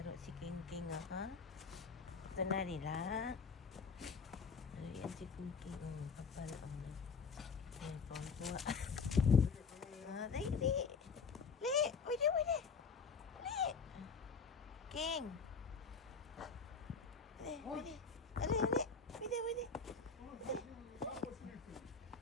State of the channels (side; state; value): right; quieter; 5.2 dB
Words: si King King ah, ha? Ito na nila. Yan si King King. Kapal ang yan, pangkuha. Dali, dali. Li! Wait, wait. Li! King! Dali, dali. Dali, dali. Wait.